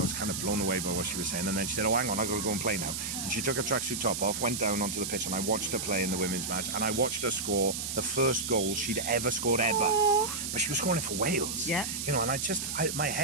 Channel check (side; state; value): right; noise; hiss, 4 dB below the sound